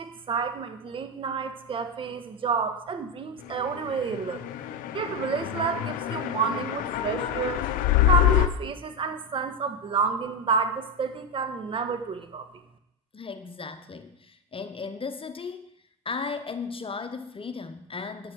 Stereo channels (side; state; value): both; normal; correlation 0.11